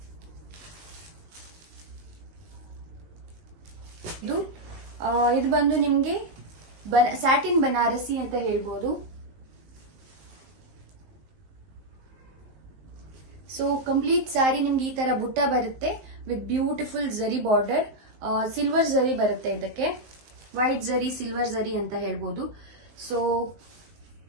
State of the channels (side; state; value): left; late; 19 ms